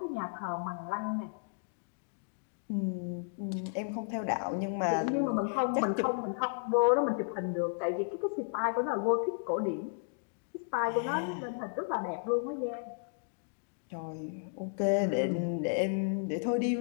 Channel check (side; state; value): right; silent; digital silence